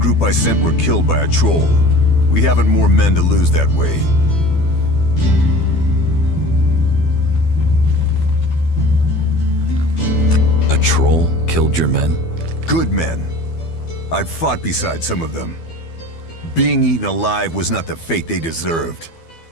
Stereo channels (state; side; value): late; right; 12 ms